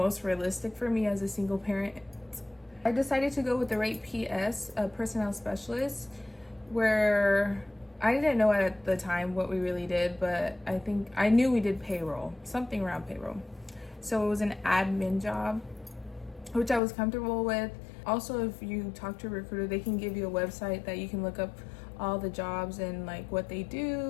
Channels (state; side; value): drops out; right; at 16.8 s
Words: realistic for me as a single parent. I decided to go with the rate PS, a personnel specialist, where I didn't know at the time what we really did, but I think I knew we did payroll, something around payroll. So it was an admin job, which I was comfortable with. Also, if you talk to a recruiter, they can give you a website that you can look up all the jobs and like what they